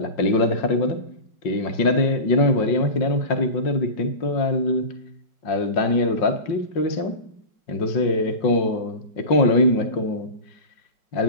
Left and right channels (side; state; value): right; late; 5.6 ms